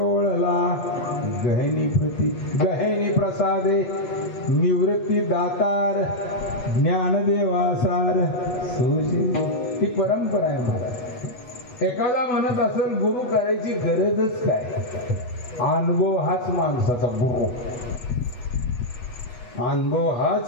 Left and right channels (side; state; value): right; late; 8.1 ms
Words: गहेनी प्रसादे निवृत्ती दातार ज्ञानदेवासार सोजे. ही परंपरा आहे महाराज. एखादा म्हणत असेल गुरु करायची गरजच काय, अनुभव हाच माणसाचा गुरु, अनुभव